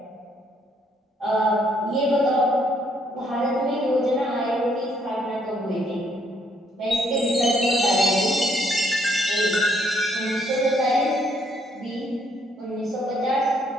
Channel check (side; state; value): both; normal; correlation 0.69